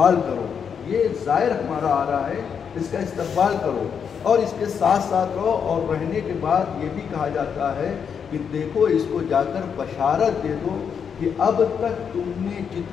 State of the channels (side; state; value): right; quieter; 7.1 dB